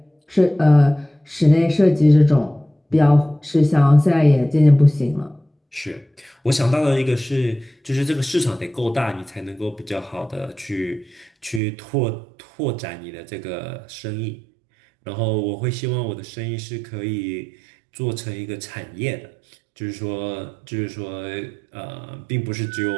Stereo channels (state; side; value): drops out; left; at 11.6 s